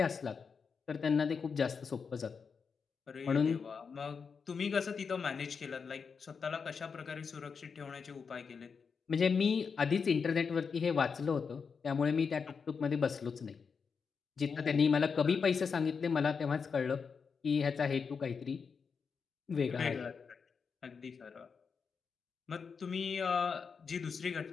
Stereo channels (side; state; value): right; quieter; 5.7 dB